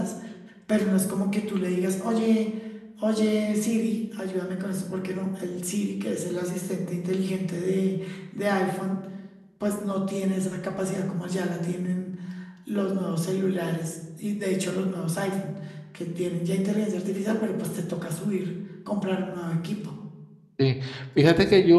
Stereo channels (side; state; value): both; identical; correlation 1.00